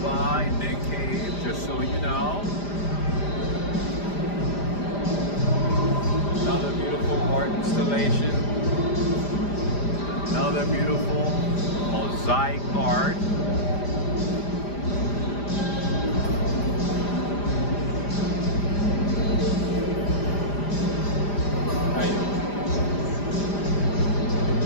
by Nick Cave, just so you know. Another beautiful art installation. Another beautiful mosaic art.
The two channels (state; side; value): late; right; 5.0 ms